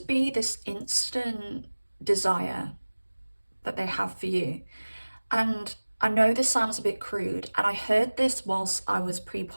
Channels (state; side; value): inverted; both; correlation -1.00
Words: be this instant desire that they have for you. And I know this sounds a bit crude, and I heard this whilst I was